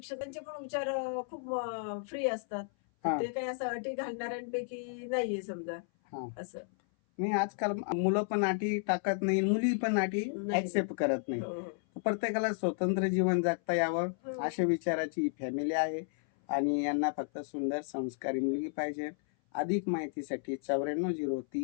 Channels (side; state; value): right; silent; 56 dB below the other